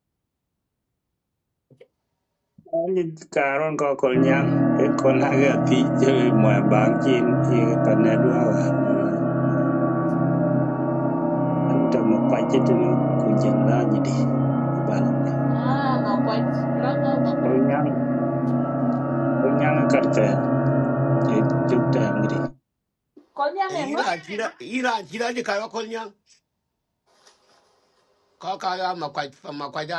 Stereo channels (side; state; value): both; identical; correlation 1.00